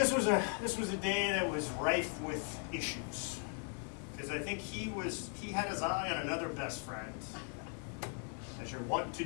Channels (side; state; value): right; quieter; 39.0 dB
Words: was a day that was rife with issues. Because I think he had his eye on another best friend, as you're wont to